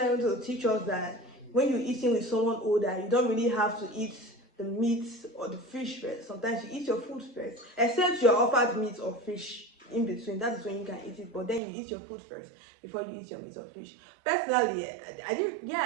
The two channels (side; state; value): left; drops out; at 11.6 s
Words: to teach us that when you're eating with someone older, you don't really have to eat the meat or the fish first. Sometimes you eat your food first, except you're offered meat or fish. in between, that is when you can eat it. But then you eat your food first before you eat your meat or fish. Personally, I didn't.